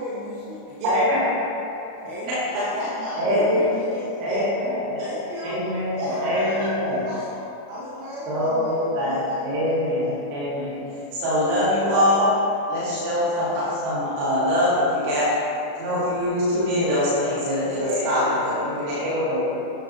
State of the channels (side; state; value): left; late; 35 ms